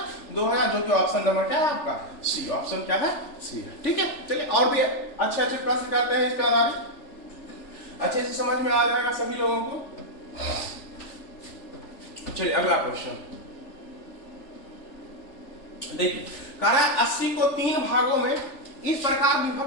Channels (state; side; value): late; right; 3.4 ms